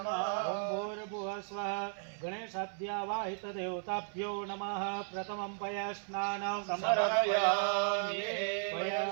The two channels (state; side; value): silent; left; 54 dB below the other